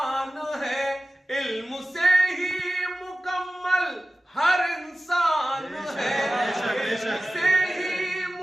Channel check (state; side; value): normal; both; correlation 0.96